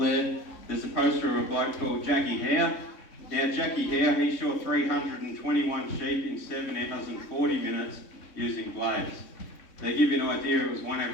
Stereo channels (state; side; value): late; right; 3.6 ms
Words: there's a poster of a bloke called Jackie Howe. Now Jackie Howe, he shot 321 sheep in 7 hours and 40 minutes using blades. They give you an idea, it was one